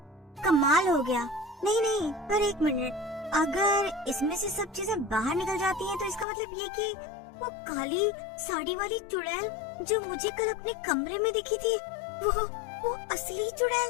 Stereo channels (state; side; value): drops out; right; at 6.2 s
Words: कमाल हो गया। नहीं, पर एक मिनट, अगर इसमें से सब चीजें बाहर निकल जाती हैं तो इसका मतलब ये कि वो काली साड़ी वाली चुड़ैल जो मुझे कल अपने कमरे में दिखी थी वो असली